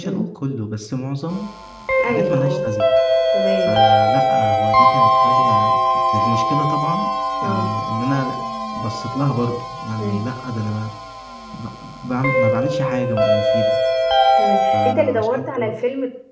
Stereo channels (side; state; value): both; identical; correlation 1.00